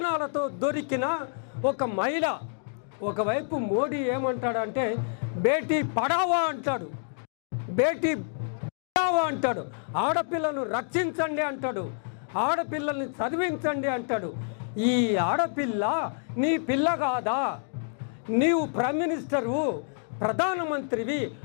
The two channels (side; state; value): right; silent; digital silence